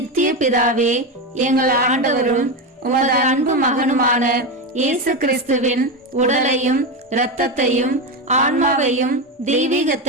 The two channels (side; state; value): both; normal; correlation 0.15